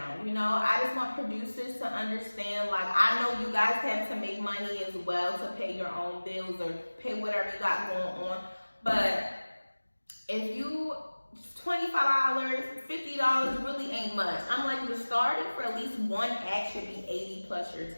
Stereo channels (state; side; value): inverted; both; correlation -1.00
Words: You know, I just want producers to understand, like, I know you guys have to make money as well to pay your own bills or pay whatever you got going on. But if you, $25, $50 really ain't much. I'm like, the starting for at least one act should be 80 plus your